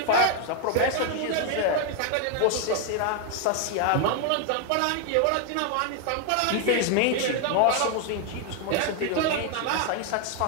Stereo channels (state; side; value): different; both; correlation 0.00